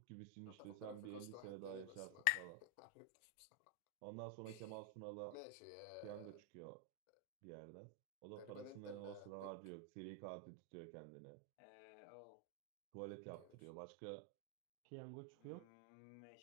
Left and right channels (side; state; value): both; different; correlation 0.00